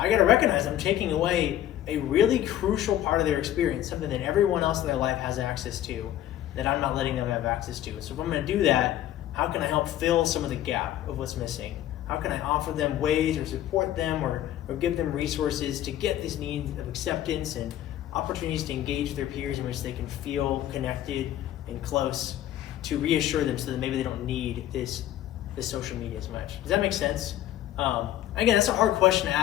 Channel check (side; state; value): right; quieter; 12.6 dB